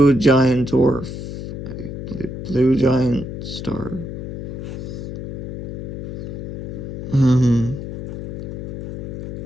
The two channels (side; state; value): left; noise; hum, 6 dB below the sound